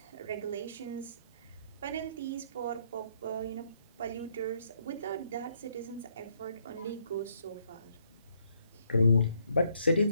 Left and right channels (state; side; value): inverted; both; correlation -0.71